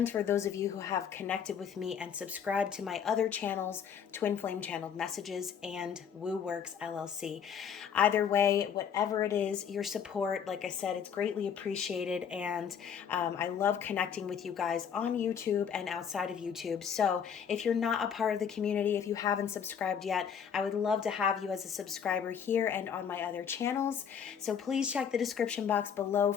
for those of you who have connected with me and subscribed to my other channels, Twin Flame Channeled Messages and Woo Works LLC. Either way, whatever it is, your support, like I said, it's greatly appreciated, and I love connecting with you guys on YouTube and outside of YouTube. So if you're not a part of the community, if you haven't subscribed yet, I would love to have you as a subscriber here and on my other channels. So please check the description box below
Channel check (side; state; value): right; quieter; 7.7 dB